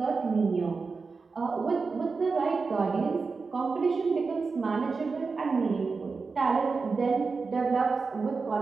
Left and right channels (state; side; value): quieter; left; 4.5 dB